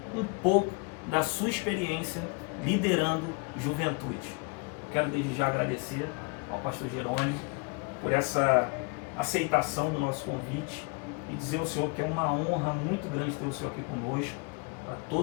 um pouco da sua experiência liderando juventude. Quero desde já agradecer ao Pastor Jerônimo por essa aceitação do nosso convite e dizer ao Senhor que é uma honra muito grande ter o Senhor aqui conosco, para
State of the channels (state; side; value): quieter; right; 32.6 dB